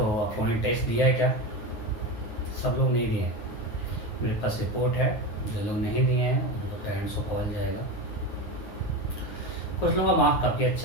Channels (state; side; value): late; right; 9.4 ms